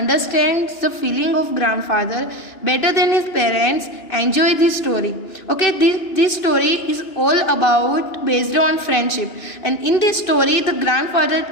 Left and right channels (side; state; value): right; late; 2.9 ms